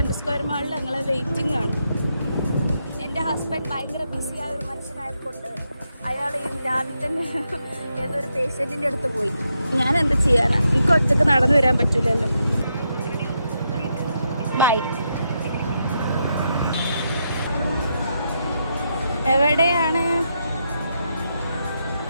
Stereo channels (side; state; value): both; inverted; correlation -0.81